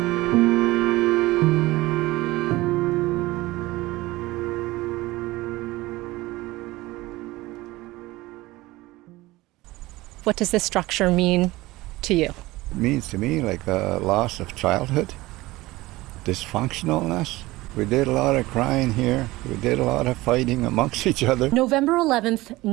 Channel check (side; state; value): left; quieter; 19.3 dB